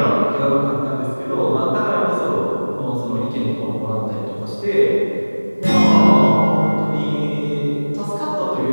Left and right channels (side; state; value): both; inverted; correlation -1.00